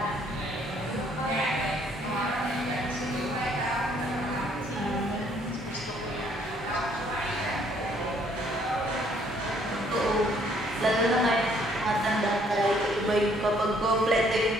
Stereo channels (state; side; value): normal; both; correlation 0.64